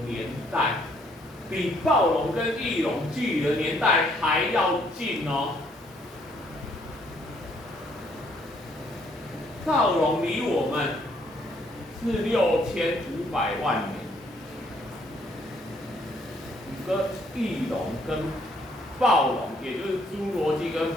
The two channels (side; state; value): both; normal; correlation 0.67